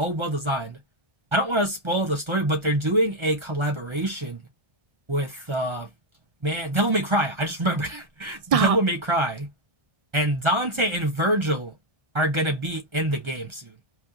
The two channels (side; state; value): left; late; 1.4 ms